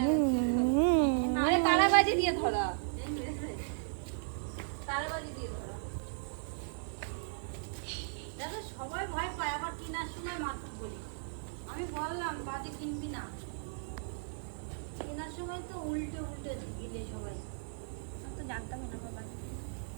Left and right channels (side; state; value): left; silent; digital silence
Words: আরে তারাবাজি দিয়ে ধরা, তারাবাজি দিয়ে ধরা। দাদা সবাই ভয় পায়, আবার কিনার সময় মাত্র বলি। আমি বললাম বাজি কিনবি না, কেনার সময় তো উল্টে উল্টে দিলে সবাই। আমি তো জানতামই না বাবা।